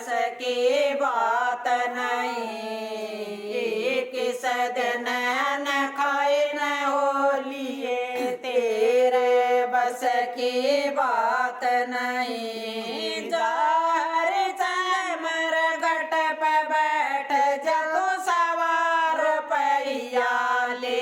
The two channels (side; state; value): both; identical; correlation 1.00